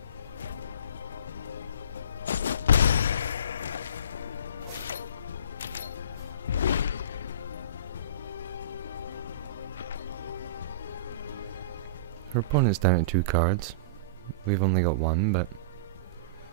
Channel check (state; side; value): inverted; both; correlation -0.34